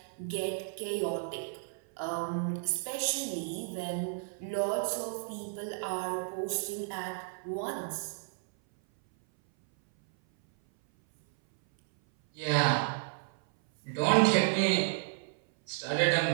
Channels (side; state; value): left; silent; 56 dB below the other